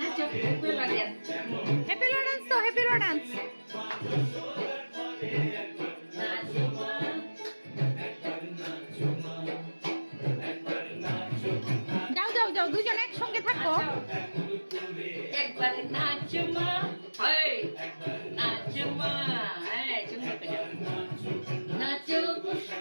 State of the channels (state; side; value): inverted; both; correlation -1.00